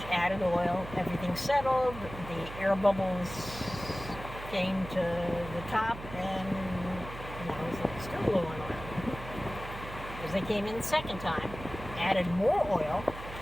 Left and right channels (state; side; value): noise; right; hum, 12 dB below the sound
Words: added oil, everything settled, the air bubbles came to the top, and now it's still low on oil. Because they came in the second time, added more oil,